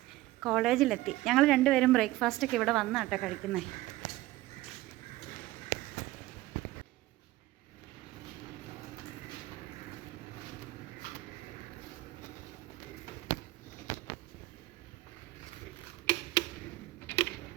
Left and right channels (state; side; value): quieter; left; 17.4 dB